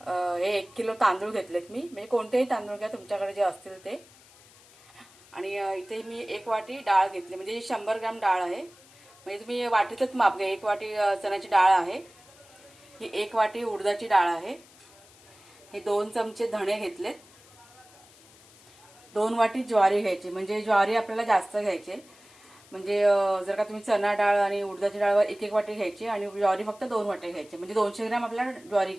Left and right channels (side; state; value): left; noise; hiss, 25 dB below the sound